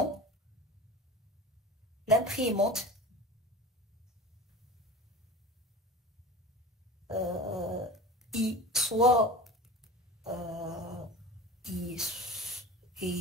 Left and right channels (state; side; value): normal; both; correlation 0.35